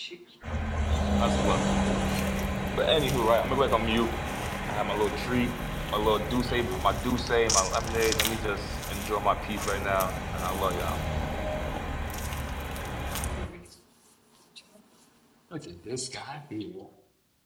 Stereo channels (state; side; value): identical; both; correlation 1.00